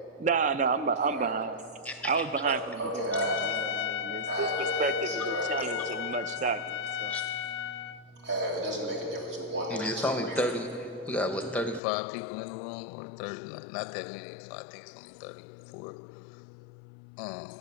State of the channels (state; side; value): drops out; right; at 11.8 s